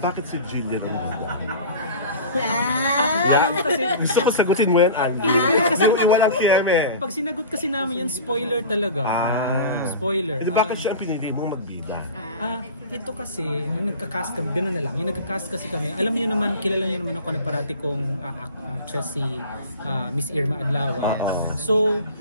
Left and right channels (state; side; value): inverted; both; correlation -0.36